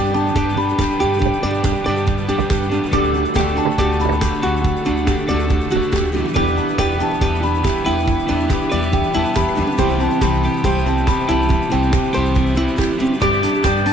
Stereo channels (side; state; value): both; normal; correlation 0.70